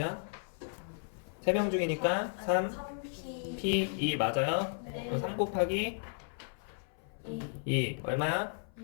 3명 중이니까 3 3P. P 2 맞아요? 네. 그럼 3 곱하기 2 얼마야?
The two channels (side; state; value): right; silent; 55 dB below the other